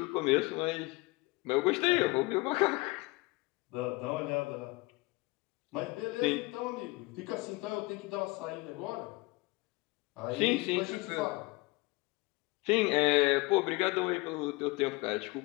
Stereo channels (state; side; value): quieter; right; 24.1 dB